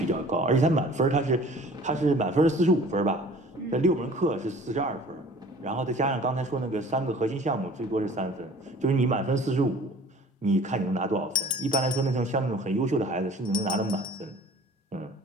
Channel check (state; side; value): normal; both; correlation 0.48